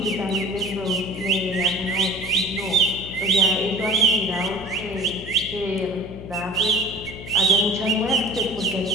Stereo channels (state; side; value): noise; left; hum, 13 dB below the sound